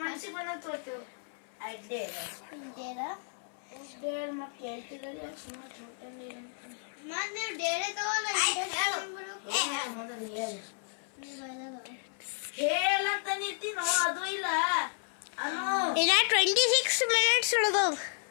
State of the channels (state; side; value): silent; right; 56 dB below the other